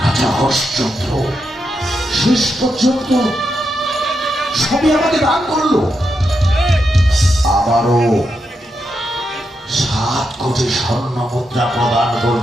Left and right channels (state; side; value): normal; both; correlation 0.84